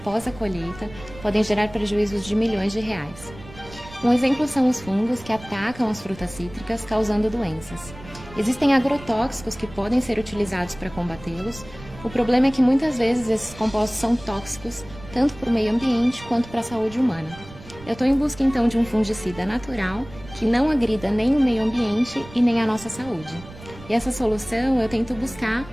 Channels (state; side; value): noise; right; rumble, 18 dB below the sound